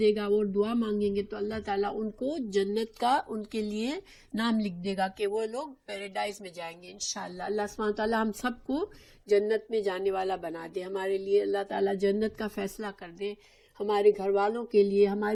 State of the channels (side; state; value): both; identical; correlation 1.00